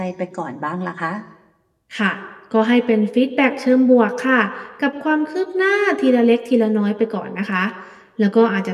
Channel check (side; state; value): both; identical; correlation 1.00